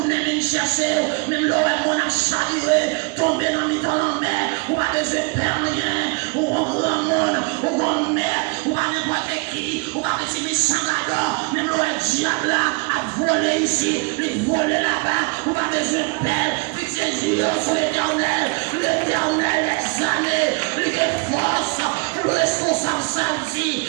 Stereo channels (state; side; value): quieter; left; 29.7 dB